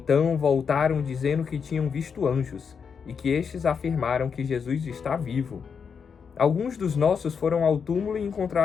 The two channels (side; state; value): right; quieter; 6.3 dB